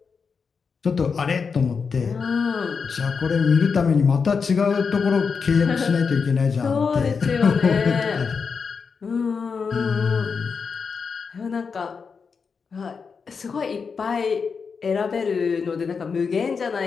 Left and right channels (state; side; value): quieter; right; 5.5 dB